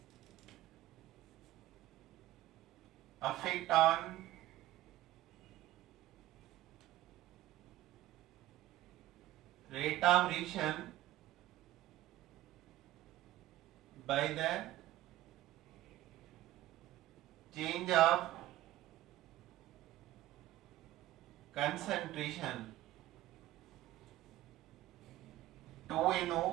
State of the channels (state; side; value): quieter; left; 15.2 dB